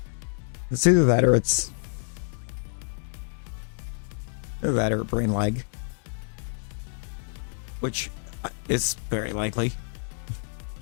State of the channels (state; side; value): silent; right; digital silence